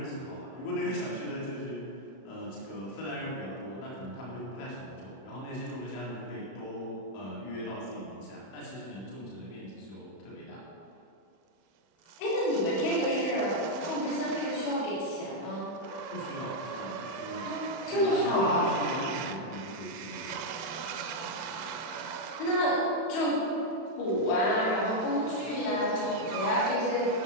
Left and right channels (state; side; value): late; right; 31 ms